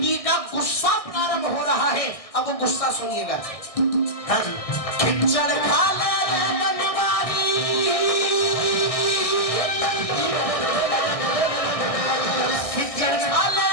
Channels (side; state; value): right; late; 1.6 ms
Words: का गुस्सा प्रारंभ हो रहा है अब वो गुस्सा सुनिएगा। खिचड़ खा ले रे बनवारी खिचड़ खा ले